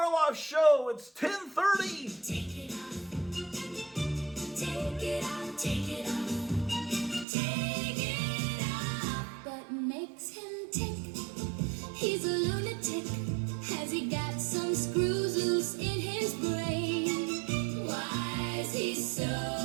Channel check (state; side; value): drops out; left; at 7.2 s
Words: Show. It's 10:30. Take it off. Take it off. Take it off. Take it off. What makes him tick? He's a lunatic. Has he got some screws loose in his brain? Why is he so